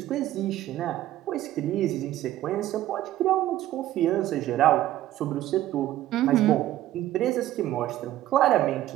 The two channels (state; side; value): quieter; left; 13.9 dB